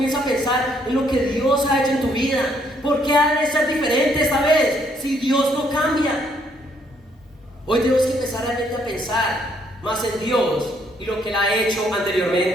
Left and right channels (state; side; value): normal; both; correlation 0.69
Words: a pensar en lo que Dios ha hecho en tu vida. ¿Por qué ha de ser diferente esta vez si Dios no cambia? Hoy tenemos que empezar realmente a pensar más en Dios y lo que Él ha hecho